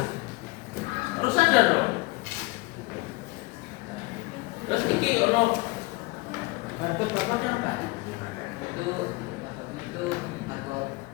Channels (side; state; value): right; quieter; 23.4 dB